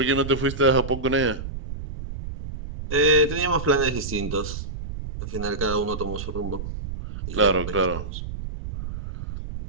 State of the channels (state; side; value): noise; right; rumble, 8 dB below the sound